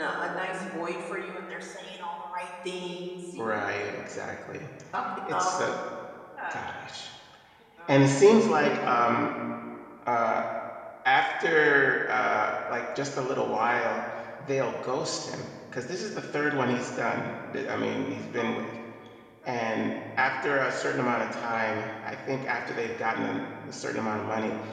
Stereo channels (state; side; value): identical; both; correlation 1.00